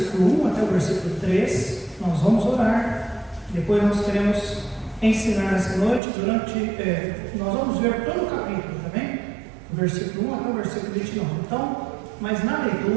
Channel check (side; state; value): left; drops out; at 6.0 s